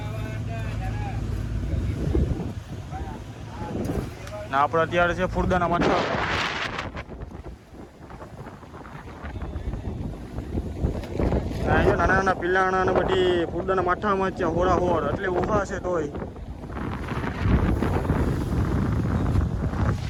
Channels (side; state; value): both; identical; correlation 1.00